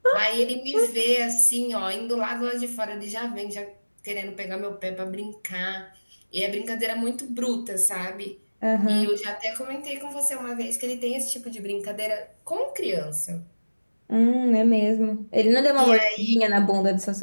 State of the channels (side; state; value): both; inverted; correlation -1.00